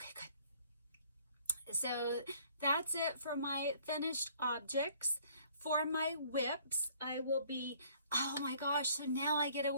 good. So that's it for my finished objects. For my WIPS, I will be, oh my gosh, so now I get to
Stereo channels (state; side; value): inverted; both; correlation -0.59